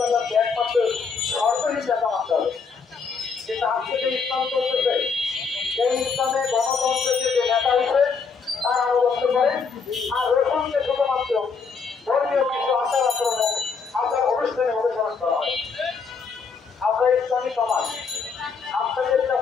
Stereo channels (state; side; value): quieter; right; 5.3 dB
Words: একমাত্র সরকারি নেতা মানতে হবে। কিন্তু আজকে যে ইসলাম চলতেছে সেই ইসলামে গণতন্ত্রের যে নেতা হিসেবে তার আনুগত্য করে, আর রসুলকে শুধুমাত্র ধর্মীয় কিছু আচার আচরণে আচার অনুষ্ঠানে অনুসরণ করা হয়। আমরা ইসলামী সমাজ আপনাদের